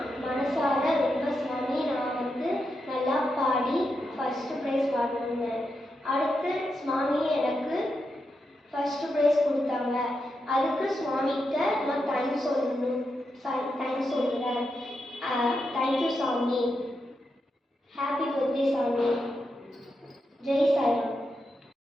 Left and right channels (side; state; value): both; normal; correlation 0.86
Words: மனசார ரொம்ப சுவாமி நான் நல்லா பாடி ஃபஸ்ட்டு ப்ரைஸ் வாங்கினேன். அடுத்து சுவாமி எனக்கு ஃபஸ்ட்டு ப்ரைஸ் கொடுத்தாங்க. அதுக்கு சுவாமிகிட்ட நான் தேங்க்ஸ் சொல்லுறேன். தேங்க்யூ சாமி. ஹாப்பி பர்த்டே சாமி. ஜெய் சாய்ராம்.